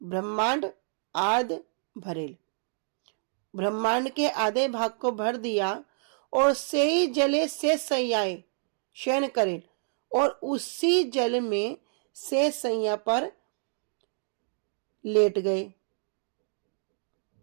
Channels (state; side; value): silent; left; digital silence